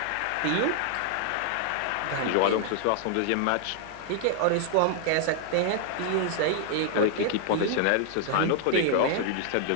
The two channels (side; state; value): both; different; correlation 0.00